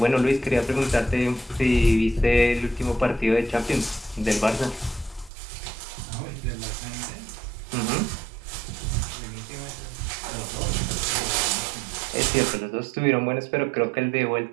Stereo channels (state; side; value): drops out; left; at 5.3 s